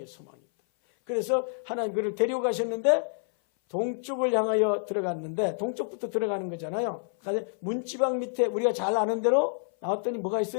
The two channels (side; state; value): right; silent; 56 dB below the other